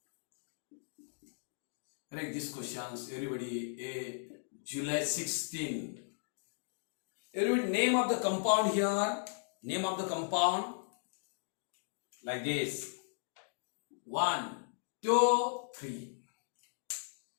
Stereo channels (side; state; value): right; silent; digital silence